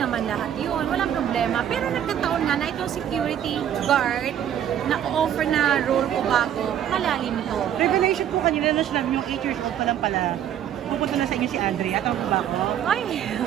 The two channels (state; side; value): quieter; left; 10.1 dB